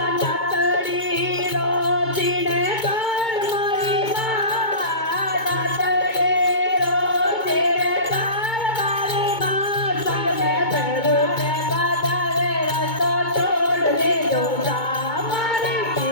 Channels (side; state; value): right; late; 2.2 ms